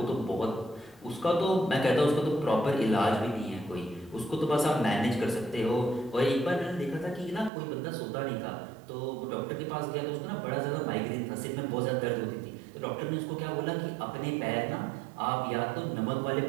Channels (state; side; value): drops out; left; at 7.5 s